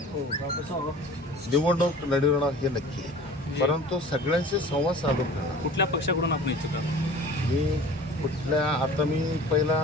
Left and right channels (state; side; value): normal; both; correlation 0.43